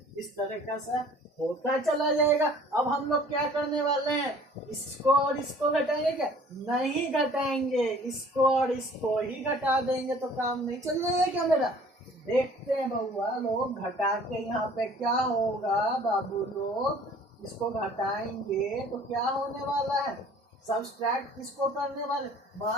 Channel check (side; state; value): both; normal; correlation 0.52